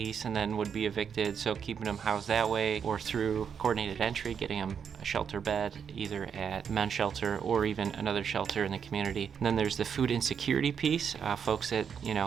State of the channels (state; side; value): quieter; left; 7.2 dB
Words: and then would be evicted, so keeping them housed that way, or through coordinated entry, getting them a shelter bed, either at men's shelter or even another shelter in the community. And then there's the food insecurity piece, folks that